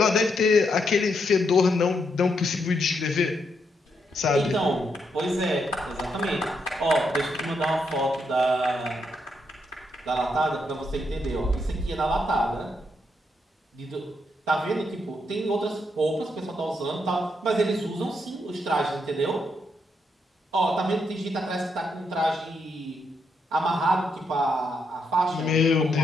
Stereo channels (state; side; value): normal; both; correlation 0.79